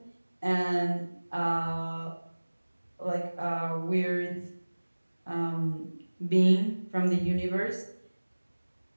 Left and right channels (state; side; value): inverted; both; correlation -1.00